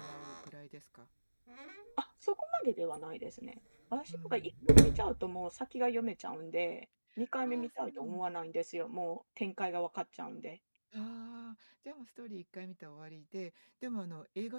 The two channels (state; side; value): inverted; both; correlation -1.00